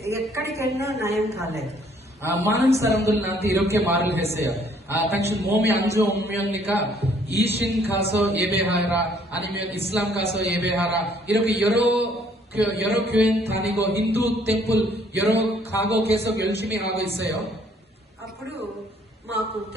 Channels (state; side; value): normal; both; correlation 0.63